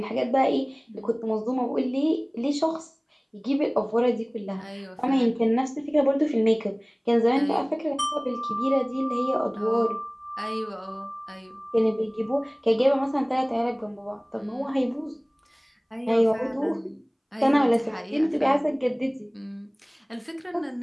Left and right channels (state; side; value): identical; both; correlation 1.00